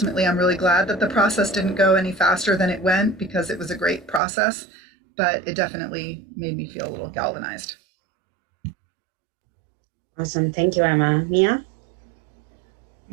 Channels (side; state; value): left; drops out; at 4.2 s